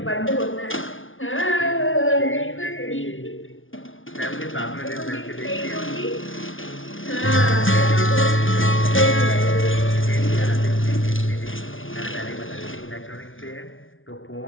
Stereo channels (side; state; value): right; late; 0.57 ms